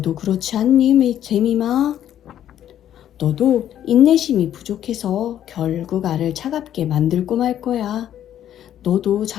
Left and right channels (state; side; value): quieter; right; 10.9 dB